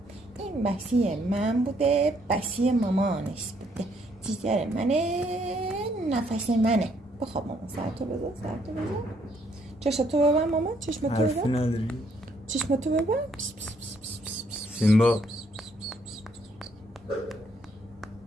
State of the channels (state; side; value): normal; both; correlation 0.69